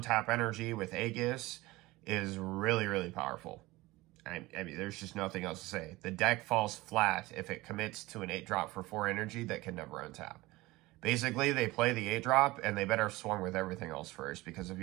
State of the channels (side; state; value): left; quieter; 20.2 dB